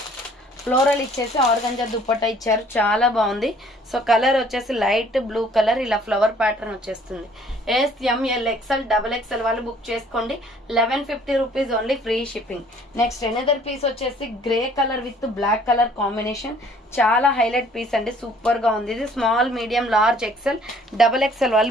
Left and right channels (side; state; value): both; normal; correlation 0.57